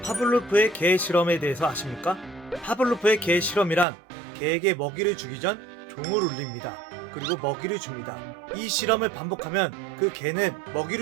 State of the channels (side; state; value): left; drops out; at 3.9 s